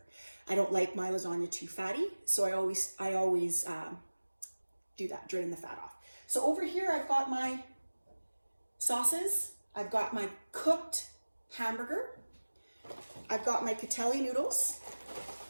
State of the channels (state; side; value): inverted; both; correlation -1.00